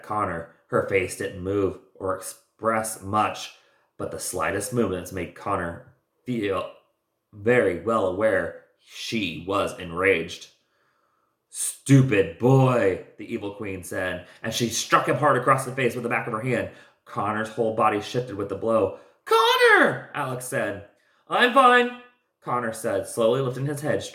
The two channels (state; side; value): identical; both; correlation 1.00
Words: Connor. Her face didn't move or express much, but the slightest movements made Connor feel very well aware she was enraged. "Stupid boy," the evil queen said, and she struck him hard across the face with the back of her hand. Connor's whole body shifted with the blow. "Connor!" Alex said. "I'm fine," Connor said, slowly lifting his head